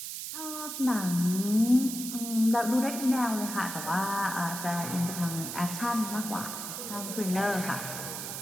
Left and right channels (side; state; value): right; noise; hiss, 6 dB below the sound